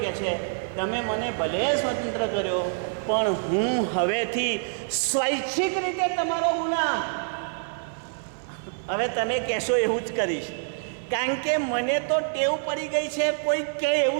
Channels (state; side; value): silent; left; digital silence